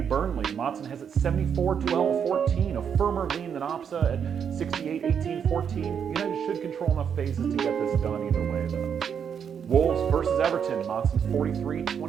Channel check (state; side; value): quieter; left; 7.6 dB